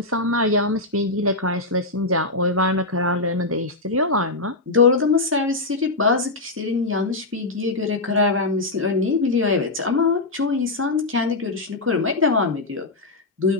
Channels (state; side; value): quieter; right; 3.1 dB